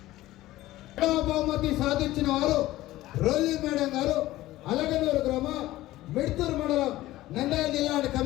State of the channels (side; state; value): right; quieter; 16.3 dB